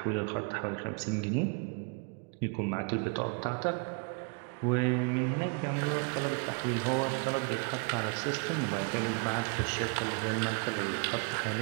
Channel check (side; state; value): left; quieter; 35.8 dB